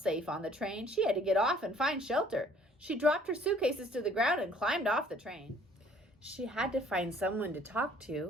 on the train. She had to get off and find shelter. She dropped her suitcases to the ground and climbed off the train. She had to find someone to talk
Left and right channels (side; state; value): both; normal; correlation 0.57